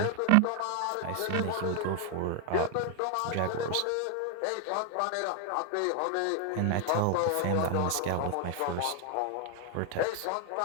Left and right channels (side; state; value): both; different; correlation 0.00